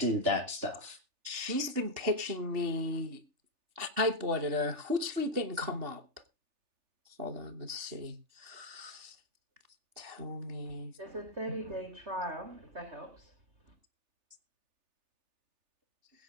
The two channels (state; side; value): late; left; 3.4 ms